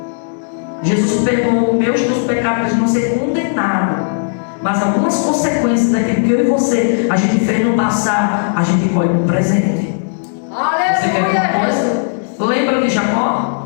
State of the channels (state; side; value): silent; right; digital silence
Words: Jesus perdoou os meus teus pecados para não ser condenado, mas algumas consequências daquilo que eu e você a gente fez no passado, a gente colhe no presente. Você quer ver uma coisa? Lembra de